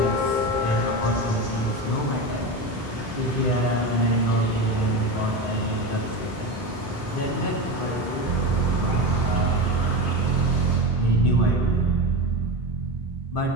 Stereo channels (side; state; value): both; normal; correlation 0.22